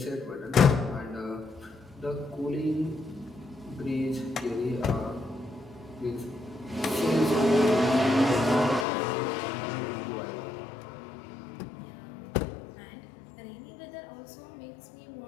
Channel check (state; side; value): drops out; right; at 8.8 s